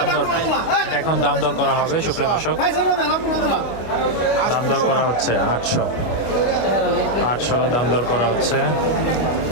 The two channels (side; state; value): right; late; 25 ms